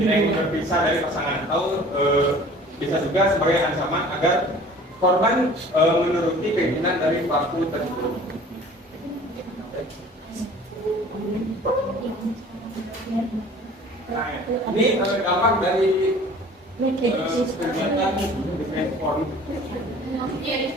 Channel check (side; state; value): both; normal; correlation 0.47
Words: ingin berpisah dari pasangan, atau bisa juga sebagai ancaman agar korban menuruti keinginan dari pelaku tersebut. Nah, ini dampak dari kegiatan defense porn.